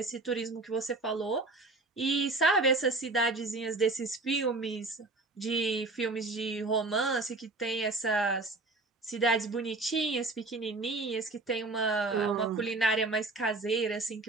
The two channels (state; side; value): quieter; left; 3.2 dB